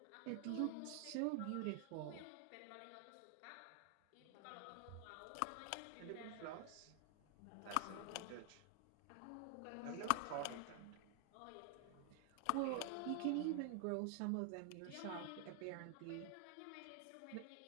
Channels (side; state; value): both; different; correlation 0.00